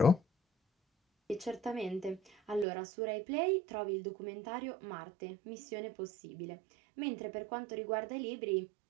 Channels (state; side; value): drops out; left; at 2.7 s